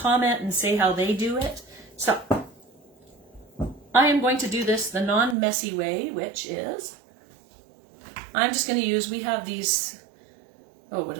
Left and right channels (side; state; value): left; drops out; at 5.4 s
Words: and say how they do it. So I am going to do this the non-messy way, which is I'm just going to use, we have these, oh, what do